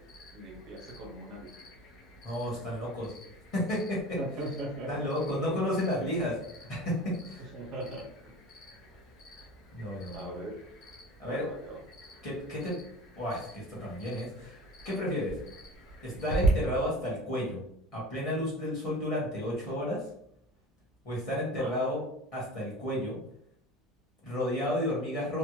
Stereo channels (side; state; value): both; normal; correlation 0.38